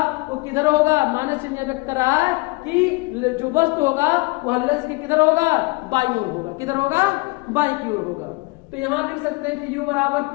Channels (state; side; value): quieter; right; 26.0 dB